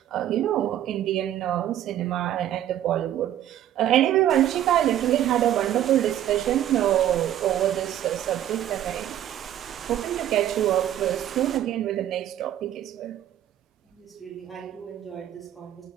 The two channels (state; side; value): quieter; left; 11.7 dB